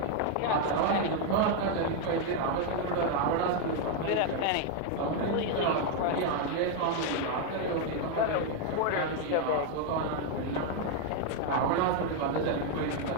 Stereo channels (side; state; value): both; different; correlation 0.01